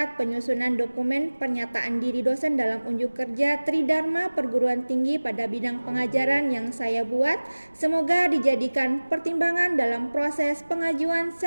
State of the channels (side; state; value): both; inverted; correlation -1.00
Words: penyusunan dokumen pernyataan diri dosen dalam unjuk kerja Tridharma Perguruan Tinggi pada bidang pengajaran yang saya buat. Semoga dijadikan pertimbangan dalam proses pengajuan